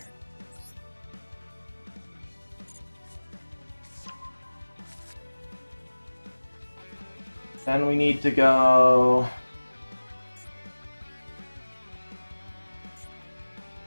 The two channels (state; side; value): inverted; both; correlation -1.00